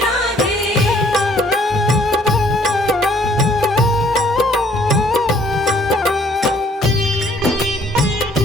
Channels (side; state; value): both; normal; correlation 0.61